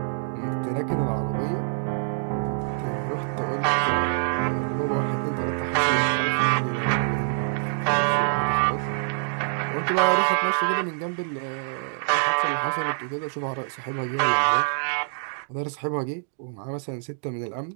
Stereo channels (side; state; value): left; silent; digital silence